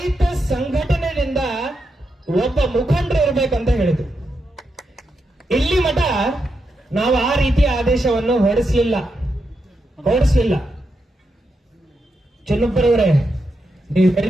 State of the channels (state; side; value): normal; both; correlation 0.85